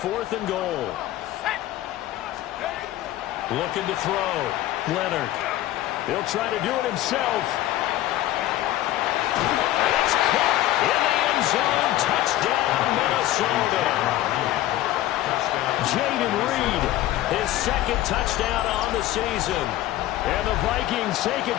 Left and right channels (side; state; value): right; quieter; 14.6 dB